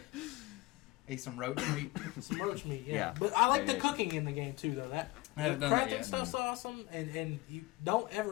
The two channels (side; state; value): right; quieter; 20.6 dB